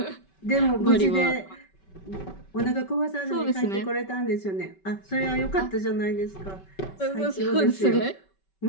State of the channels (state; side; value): late; right; 5.2 ms